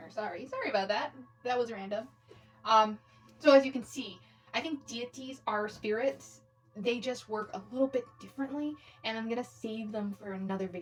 Sorry about that. That was random. So as you can see, I think deities are spirits. They just work a little bit differently, and I'm gonna save them for another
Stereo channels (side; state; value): both; identical; correlation 1.00